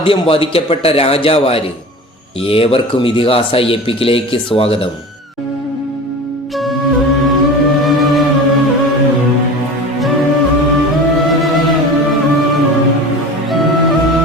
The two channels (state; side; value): normal; both; correlation 0.35